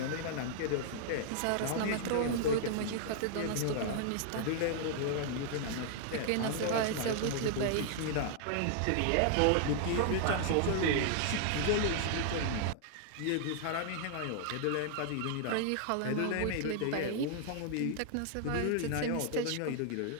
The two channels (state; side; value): different; both; correlation -0.01